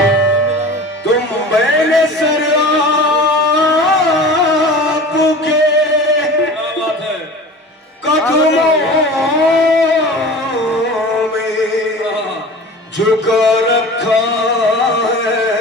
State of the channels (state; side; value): normal; both; correlation 0.37